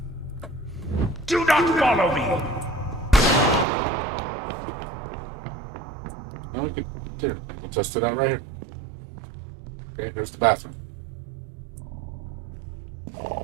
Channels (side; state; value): left; drops out; at 3.7 s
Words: Do not follow me! No, we could here. We'll test it out right here. Okay, here's the bathroom.